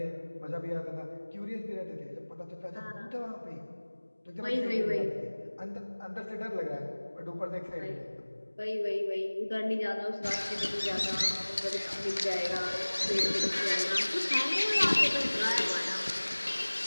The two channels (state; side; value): inverted; both; correlation -1.00